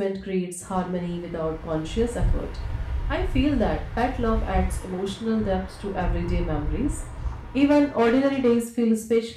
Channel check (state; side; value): identical; both; correlation 1.00